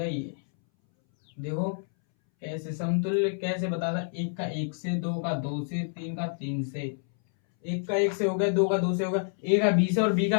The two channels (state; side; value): silent; right; 59 dB below the other